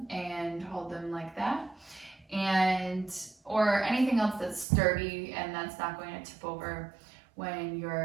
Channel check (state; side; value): drops out; left; at 4.7 s